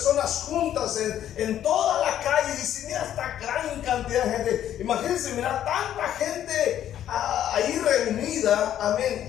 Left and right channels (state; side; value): quieter; right; 11.0 dB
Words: juntas en toda la calle y dice: mira esta gran cantidad de gente. Imagínense mirar tanta gente ahí reunida, amén,